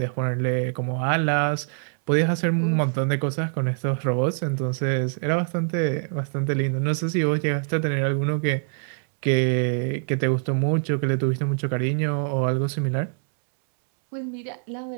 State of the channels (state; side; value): silent; left; 62 dB below the other